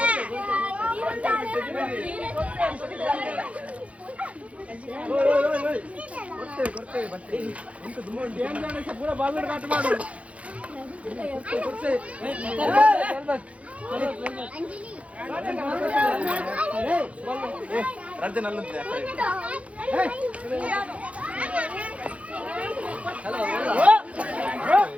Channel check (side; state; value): left; late; 0.064 ms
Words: ಪೂರ ಬಾಗಿಲು ಕಾಟ ಮಾಡು ರಾಜ್ಯನಲ್ಲಂತೆ